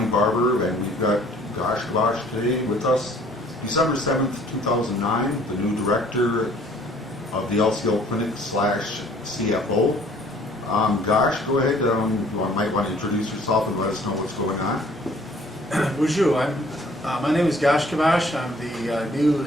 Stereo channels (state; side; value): normal; both; correlation 0.56